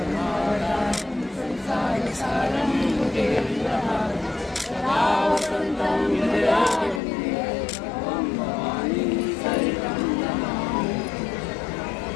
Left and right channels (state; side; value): drops out; right; at 7.0 s